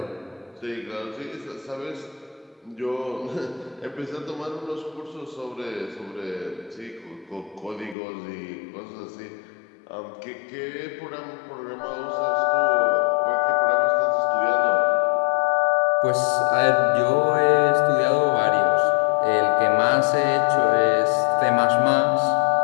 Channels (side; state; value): right; drops out; at 8.0 s